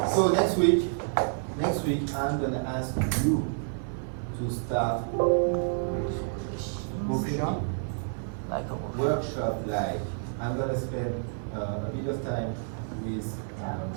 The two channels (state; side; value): silent; left; 59 dB below the other